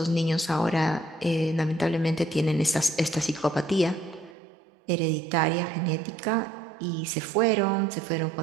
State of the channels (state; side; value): drops out; left; at 4.4 s